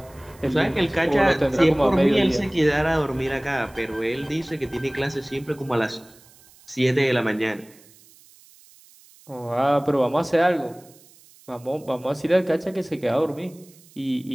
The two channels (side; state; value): right; noise; hiss, 26 dB below the sound